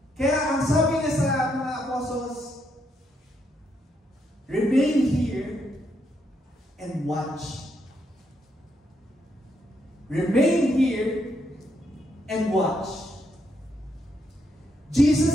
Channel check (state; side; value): normal; both; correlation 0.77